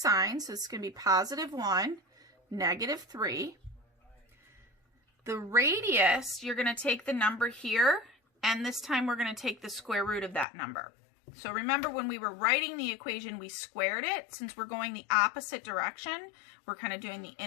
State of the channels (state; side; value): drops out; right; at 10.5 s